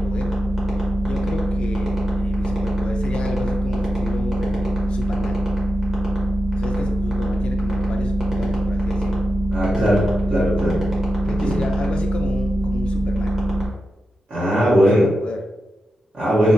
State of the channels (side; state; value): both; normal; correlation 0.90